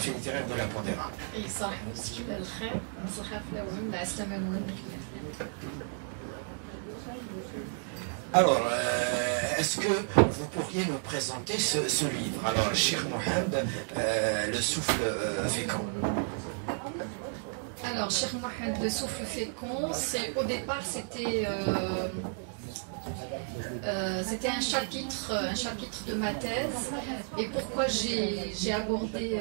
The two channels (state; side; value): silent; left; 56 dB below the other